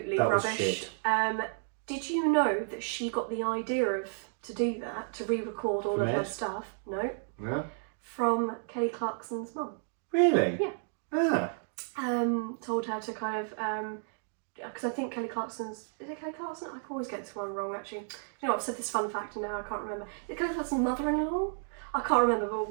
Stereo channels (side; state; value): left; silent; 56 dB below the other